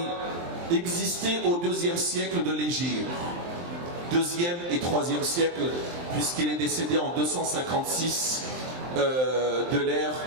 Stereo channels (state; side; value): late; left; 23 ms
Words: existait au 2e siècle de l'Hégire. 2e et 3e siècle, puisqu'il est décédé en 256 de l'ère